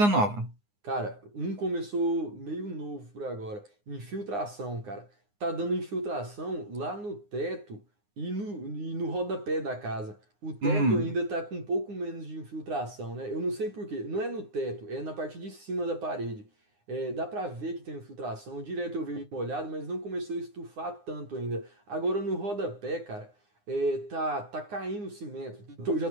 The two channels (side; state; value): left; late; 9.7 ms